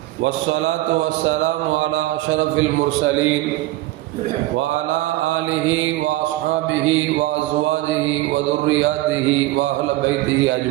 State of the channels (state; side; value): quieter; left; 17.4 dB